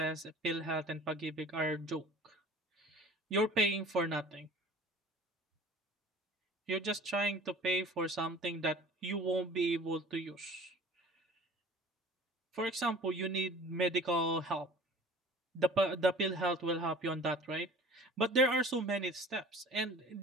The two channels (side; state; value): both; normal; correlation 0.44